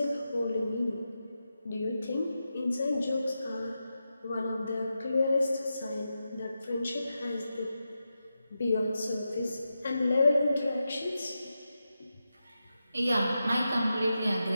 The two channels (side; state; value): both; inverted; correlation -0.90